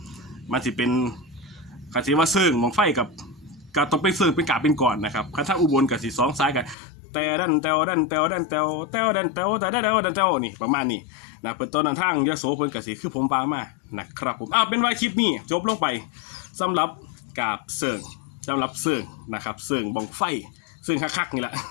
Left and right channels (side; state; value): right; drops out; at 6.8 s